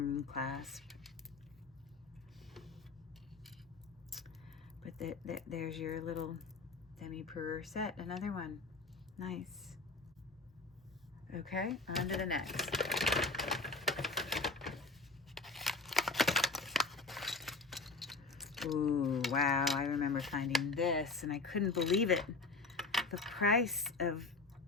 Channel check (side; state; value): right; quieter; 3.8 dB